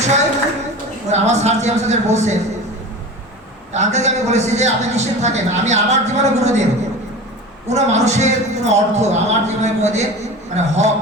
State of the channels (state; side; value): normal; both; correlation 0.33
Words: আমার স্যার যে আমাদের বলছেন, আঙ্কেলকে আমি বলেছি যে আপনি নিশ্চিত থাকেন, আমি আমার জীবনে কোনোদিন কোনো মানুষের কোনো অর্থ আমার জীবনে কোনোদিন মানে হক,